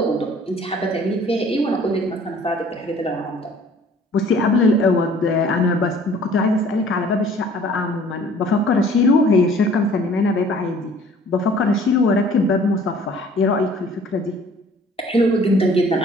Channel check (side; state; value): both; normal; correlation 0.53